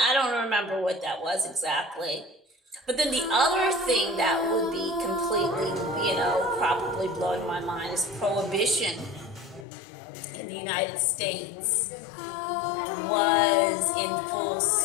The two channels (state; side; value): drops out; right; at 9.7 s